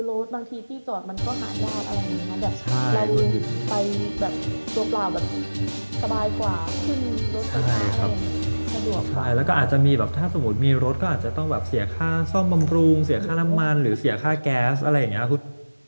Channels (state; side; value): inverted; both; correlation -1.00